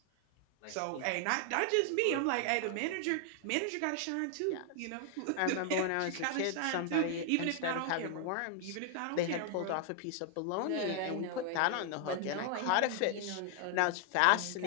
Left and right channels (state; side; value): different; both; correlation 0.00